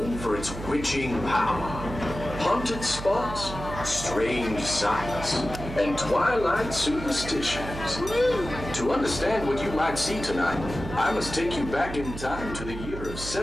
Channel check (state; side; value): noise; right; hum, 9 dB below the sound